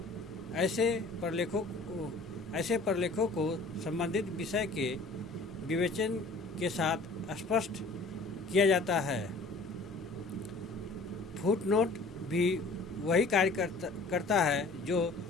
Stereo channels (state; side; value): quieter; right; 3.4 dB